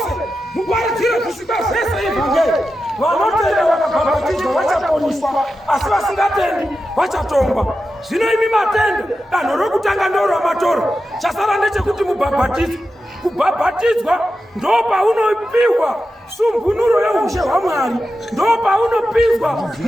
muparidzire kusvika zvese evhangeri. Vanotenda vakabhabhatidzwa vachaponiswa, asi vasingatendi vachatongwa. Zvino imi matenda danho rokutanga ndoramatora. Chasara ndechekuti mubhabhatidzwe. Kubhabhatidzwa ndo paunopiwa sumbunuro yeushe hwaMwari, ndo paunopinzwa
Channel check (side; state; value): both; normal; correlation 0.91